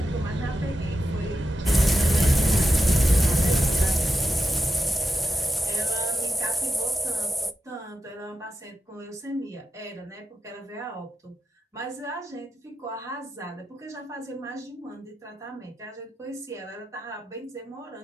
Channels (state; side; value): normal; both; correlation 0.89